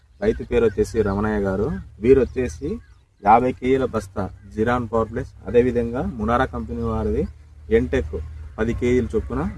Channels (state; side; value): identical; both; correlation 1.00